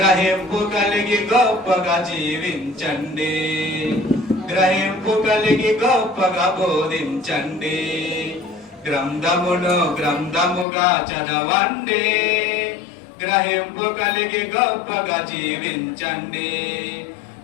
కలిగి గొప్పగా జీవించండి, గ్రహింపు కలిగి గొప్పగా బోధించండి. గ్రంథముగా చదవండి, గ్రహింపు కలిగి గొప్పగా జీవించండి,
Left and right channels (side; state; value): right; drops out; at 10.7 s